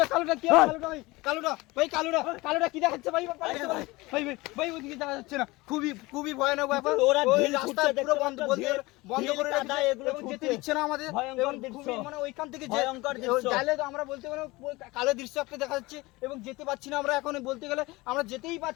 কি কালোটা কি দেখাচ্ছে ভাই? ভাই ওদিকে যাওয়া যাচ্ছে না, খুবই ভয়ানক ব্যাপার। ওরা ওই রাস্তা পুরো বন্ধ করে দাদা এগুলো যেতে দিচ্ছে না আমাদের। ভয়ঙ্কর এবং দৃশ্য, খুবই মানে ওইখান থেকে ভয়ঙ্কর দৃশ্য। গেলে তো আমরা বলতে গেলে কালো দৃশ্য একটা দেখা যাচ্ছে, এবং যেতে পারছি না আমরা। এখন বলতে গেলে আমরা যেতেই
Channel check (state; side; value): quieter; right; 21.8 dB